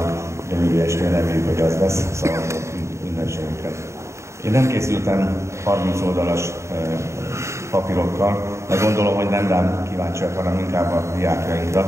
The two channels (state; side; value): late; left; 0.14 ms